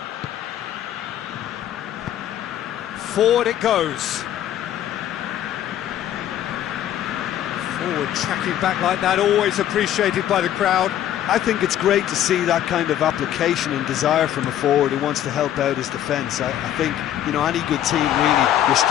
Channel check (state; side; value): quieter; right; 11.5 dB